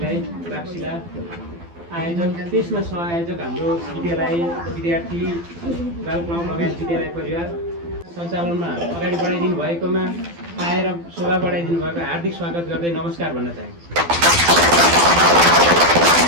बाक्सिला आयोजक, त्यसमा सहआयोजक हाम्रो विद्यालय विद्यार्थी बाल क्लब लगायत विद्यालय परिवार सञ्चालनमा अगाडि बढाइदिनु भएकोमा आएर शोभा बढाइदिनु भएको हार्दिक स्वागत गर्दै नमस्कार भन्न चाहे।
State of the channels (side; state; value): left; late; 12 ms